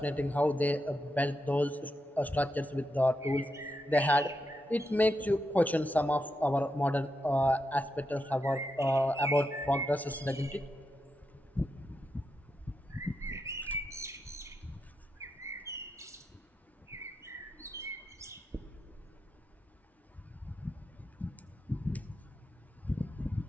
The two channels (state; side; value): normal; both; correlation 0.85